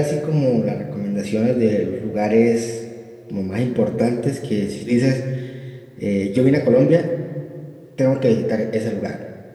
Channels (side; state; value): both; identical; correlation 1.00